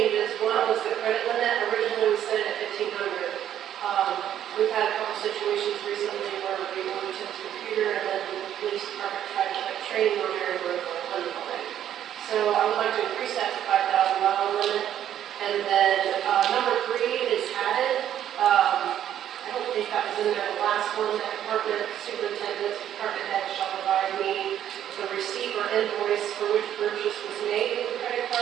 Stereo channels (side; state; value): left; quieter; 10.7 dB